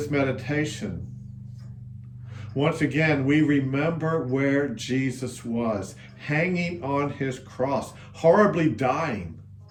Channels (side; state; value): both; identical; correlation 1.00